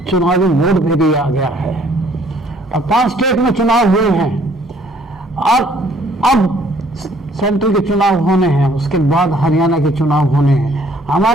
चुनावी मोड में भी आ गया है। अब 5 स्टेट में चुनाव हुए हैं और अब सेंट्रल के चुनाव होने हैं, उसके बाद हरियाणा के चुनाव होने हैं।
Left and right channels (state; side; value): normal; both; correlation 0.61